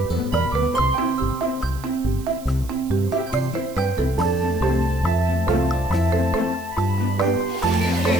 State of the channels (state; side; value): noise; right; hiss, 20 dB below the sound